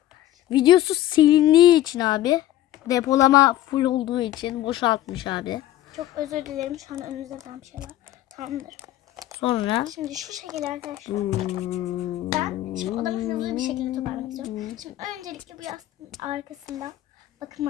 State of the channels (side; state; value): right; quieter; 13.7 dB